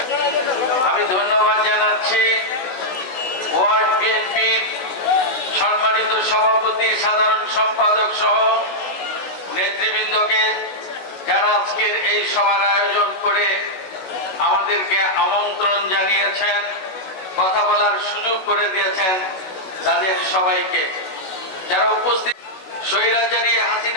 আমি ধন্যবাদ জানাচ্ছি ওয়ার্ড বিএনপির সম্মানিত সভাপতি, সাধারণ সম্পাদক সহ নেতৃবৃন্দকে, যারা আজকের এই সভার আয়োজন করে আমাদেরকে আমন্ত্রণ জানিয়েছেন, কথা বলার সুযোগ করে দিয়েছেন, তাদের সবাইকে। যারা উপস্থিত, স্বৈরাচারী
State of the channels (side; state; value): right; late; 16 ms